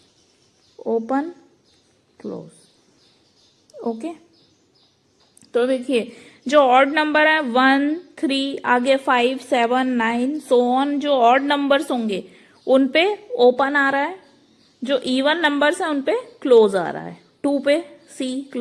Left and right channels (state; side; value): identical; both; correlation 1.00